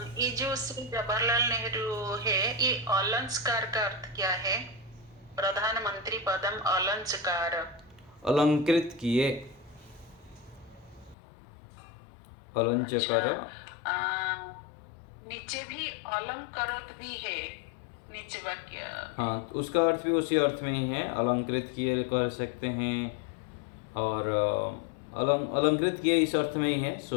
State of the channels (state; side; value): drops out; right; at 11.2 s